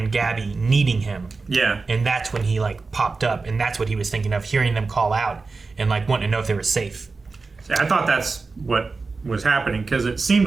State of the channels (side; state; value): left; quieter; 4.1 dB